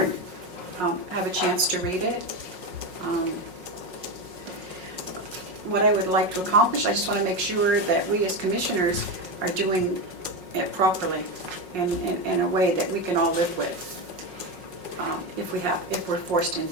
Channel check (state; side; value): late; left; 5.5 ms